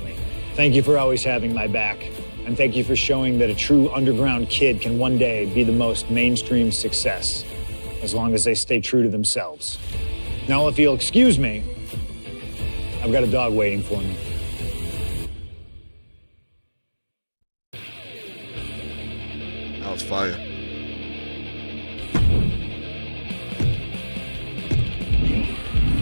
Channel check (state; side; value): inverted; both; correlation -1.00